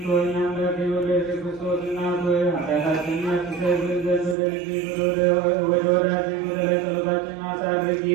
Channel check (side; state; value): left; drops out; at 4.4 s